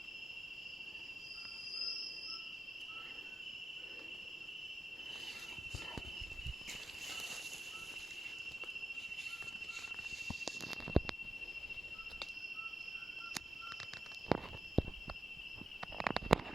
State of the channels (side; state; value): both; normal; correlation 0.91